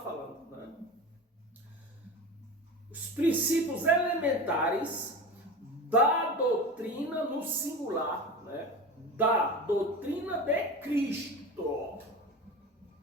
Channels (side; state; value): both; normal; correlation 0.29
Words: né? Os princípios elementares da doutrina no singular, né? Da doutrina de Cristo.